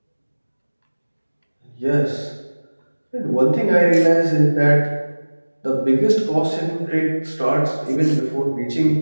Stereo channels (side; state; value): both; inverted; correlation -1.00